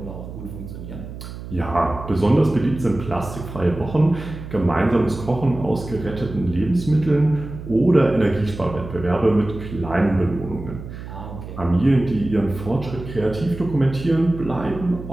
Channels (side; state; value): right; noise; hum, 11 dB below the sound